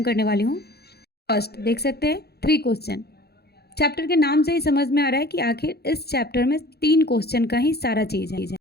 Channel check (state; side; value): late; right; 0.47 ms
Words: करने वाली हूँ। फर्स्ट देख सकते हैं 3 क्वेश्चन। चैप्टर के नाम से ही समझ में आ रहा है कि आखिर इस चैप्टर में 3 क्वेश्चन का ही सारा चीज़ है।